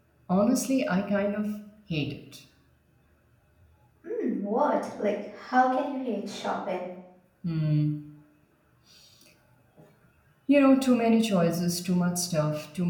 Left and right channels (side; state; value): both; identical; correlation 1.00